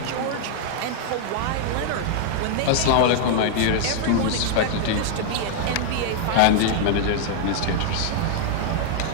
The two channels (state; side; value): different; both; correlation 0.00